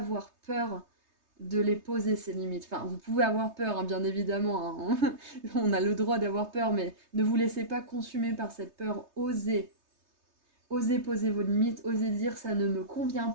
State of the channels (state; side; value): late; left; 3.3 ms